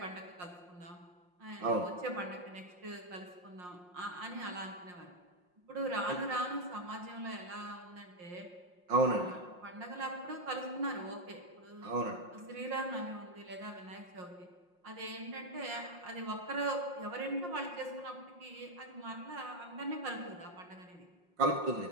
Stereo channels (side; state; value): left; late; 5.6 ms